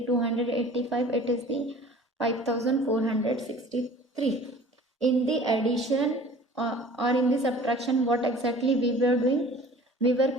285, it is the 5463. In the addition or in the subtraction, what exactly we were doing? We were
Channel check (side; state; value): both; normal; correlation 0.46